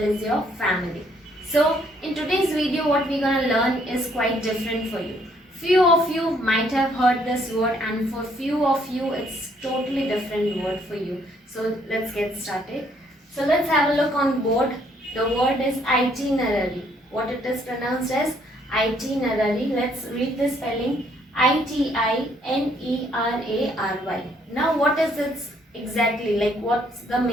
as your family. So in today's video what we're going to learn is quite different for you. Few of you might have heard this word and for few of you it's totally different word for you. So let's get started. So let's have a look on board. The word is itinerary. What it is pronounced as itinerary. Let's read the spelling. Itinerary. Now what is it exactly, like what's the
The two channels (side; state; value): both; normal; correlation 0.67